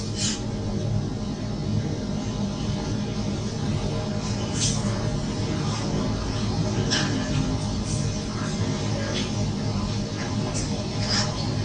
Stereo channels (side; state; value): both; identical; correlation 1.00